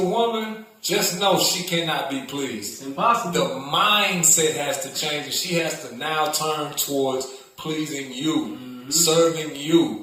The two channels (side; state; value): both; identical; correlation 1.00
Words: just know she cannot be pleased. It's impossible. The mindset has to change, and she has to now turn towards pleasing you, serving